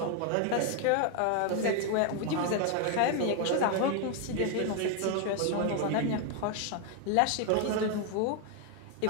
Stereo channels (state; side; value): different; both; correlation 0.01